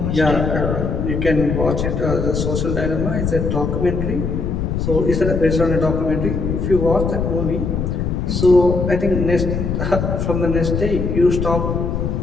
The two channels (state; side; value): noise; left; rumble, 1 dB below the sound